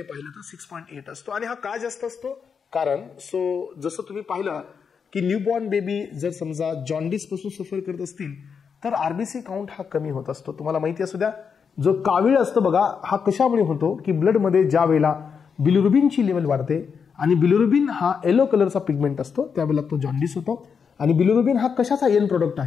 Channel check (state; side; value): quieter; right; 6.3 dB